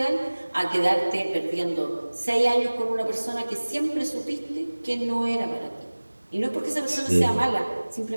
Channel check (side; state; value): both; inverted; correlation -1.00